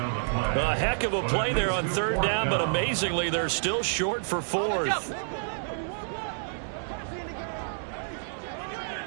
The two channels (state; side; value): silent; left; digital silence